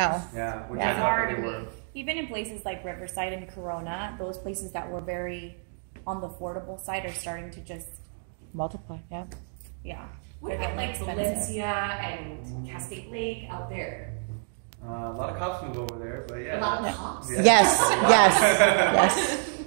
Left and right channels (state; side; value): silent; left; 59 dB below the other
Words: Yeah, which Yeah. I thought that they were. Even in places like Riverside and Corona, those places that were very on the affordable side are starting to just Multiply, yeah. yeah. What about like Valencia and Cascade Lake out there? A lot of cops move over there, but yeah. A lot of cops? Yeah. Yes, yes.